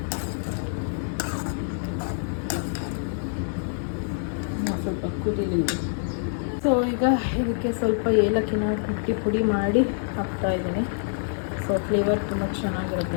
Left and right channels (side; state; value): right; silent; digital silence